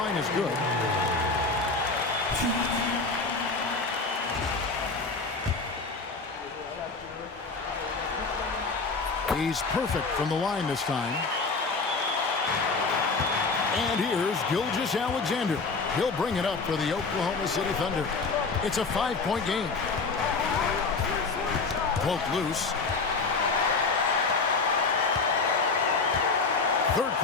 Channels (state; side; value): quieter; right; 4.2 dB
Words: is good. He's perfect from the line this time. And here's Gilgeous-Alexander. He'll bring it up for the Oklahoma City Thunder. It's a 5-point game. Poke loose. Third